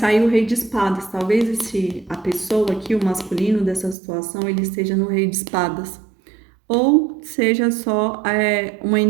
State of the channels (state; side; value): drops out; left; at 4.0 s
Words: o rei de espadas. Talvez a pessoa aqui, o masculino dessa situação, ele esteja no rei de espadas. Ou seja só uma